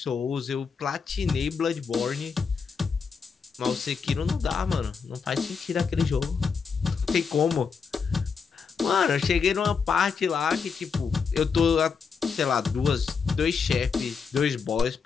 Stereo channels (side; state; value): right; quieter; 5.7 dB